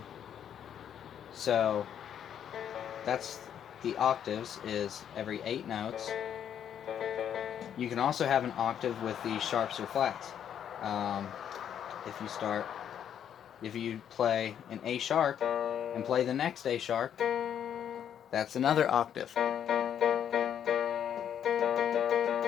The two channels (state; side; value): quieter; right; 9.2 dB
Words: So that's the octaves, is every 8 notes. You can also have an octave with the sharps or flats. If you play an A sharp and play the next A sharp, that's another octave.